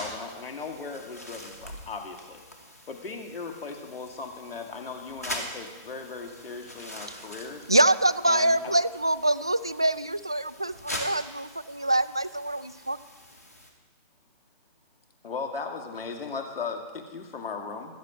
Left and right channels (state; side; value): inverted; both; correlation -0.71